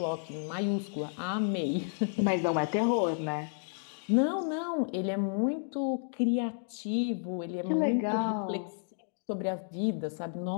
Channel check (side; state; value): right; silent; digital silence